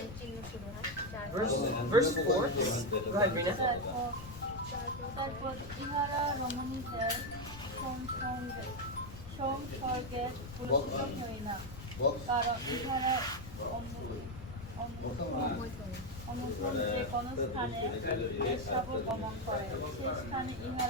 চিহ্ন শুরু হয়। Verse 4. Go ahead, Rina. তারপর ইহারা রমণীদের সংসর্গে পুরস্কৃত হয় না, কারণ ইহারা অনুসরণ যে কোন স্থানে বেশ্যাবর গমন করে, সে স্থানে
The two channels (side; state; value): left; noise; rumble, 12 dB below the sound